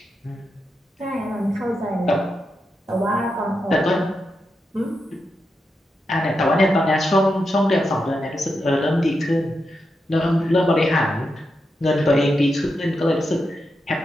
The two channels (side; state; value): both; normal; correlation 0.86